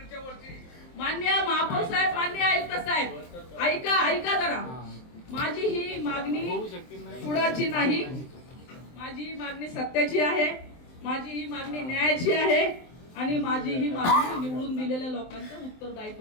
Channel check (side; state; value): right; late; 23 ms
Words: माननीय महापौर साहेब, माननीय आयुक्त साहेब, ऐका जरा. माझी ही मागणी कुणाची नाही, माझी ही मागणी सत्याची आहे, माझी ही मागणी न्यायाची आहे आणि माझी ही मागणी निवडून दिलेल्या लोकांचं